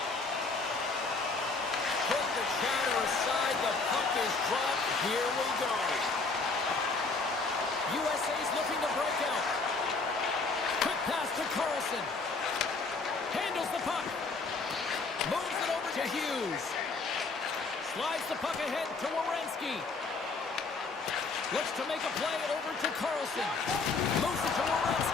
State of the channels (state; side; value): quieter; right; 4.0 dB